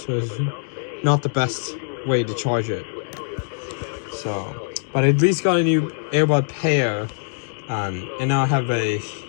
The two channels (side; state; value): right; silent; digital silence